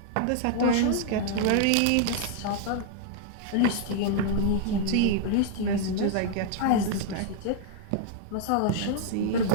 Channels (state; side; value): different; both; correlation -0.01